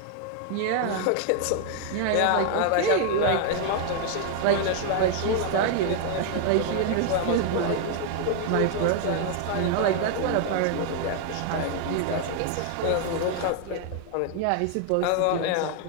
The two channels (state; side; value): different; both; correlation 0.00